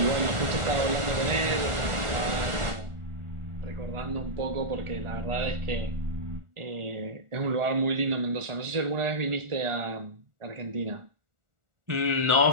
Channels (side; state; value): left; late; 1.4 ms